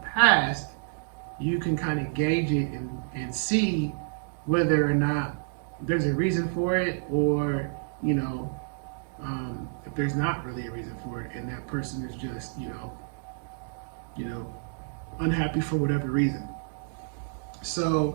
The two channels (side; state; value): left; silent; digital silence